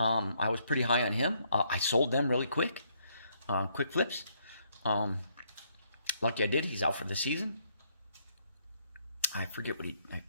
was pretty high on him. I sold them really quick. Quick flips. Lucky I did. He's out for the season. I forget what I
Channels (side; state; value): both; inverted; correlation -0.71